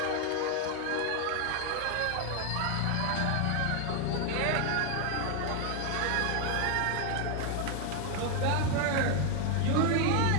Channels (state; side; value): different; both; correlation 0.01